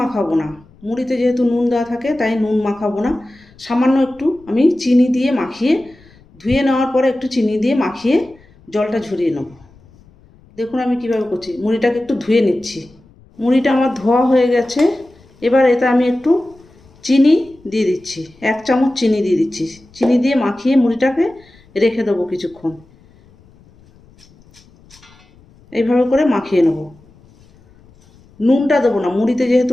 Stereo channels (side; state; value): left; noise; rumble, 28 dB below the sound